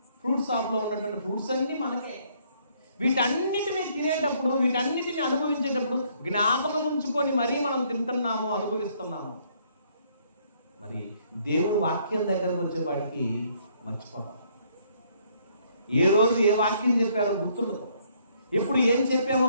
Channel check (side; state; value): both; inverted; correlation -0.67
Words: ఫ్రూట్స్ షాప్లో ఉన్నటువంటి ఫ్రూట్స్ అన్నీ మనకే. వీటన్నిటిని తినేటప్పుడు, వీటన్నిటిని అనుభవించేటప్పుడు జ్ఞాపకం ఉంచుకొని మరీ మనం తింటున్నాము, అనుభవిస్తున్నాము. మరి దేవుని వాక్యం దగ్గరకు వచ్చేవాడికి మర్చిపోతాం. ఏ రోజు ఏ వాక్యం చెప్పారో గుర్తుండదు, ఎప్పుడు ఏం చెప్పామో